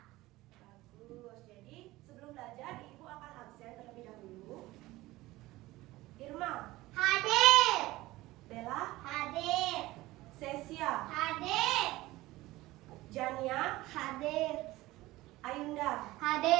Bagus. Jadi sebelum belajar ibu akan absen terlebih dahulu. Irma, Hadir. Bella, Hadir. Sesia, Hadir. Jania, Hadir. Ayunda.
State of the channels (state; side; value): quieter; left; 18.4 dB